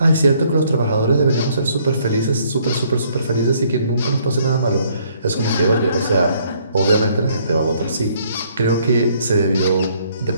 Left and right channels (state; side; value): inverted; both; correlation -0.65